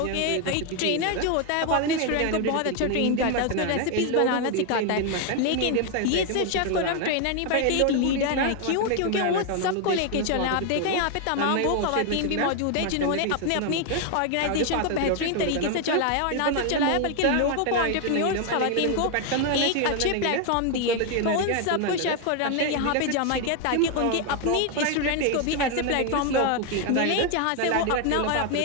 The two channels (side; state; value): both; different; correlation 0.01